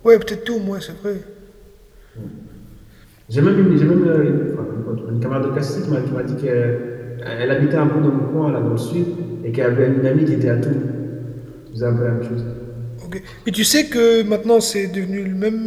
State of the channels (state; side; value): identical; both; correlation 1.00